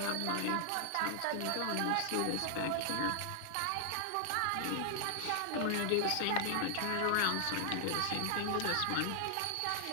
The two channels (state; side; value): different; both; correlation -0.01